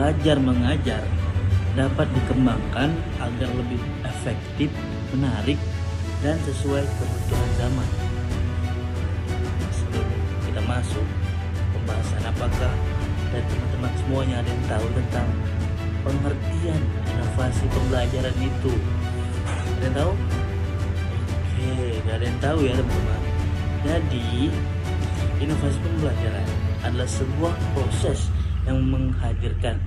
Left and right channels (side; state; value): both; identical; correlation 1.00